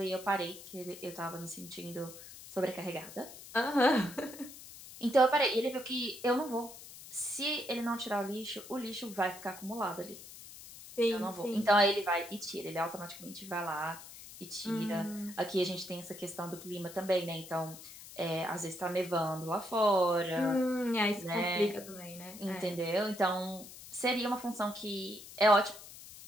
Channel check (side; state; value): left; noise; hiss, 15 dB below the sound